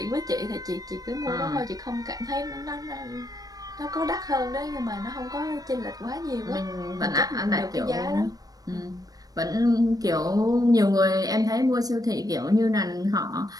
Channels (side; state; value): left; late; 0.18 ms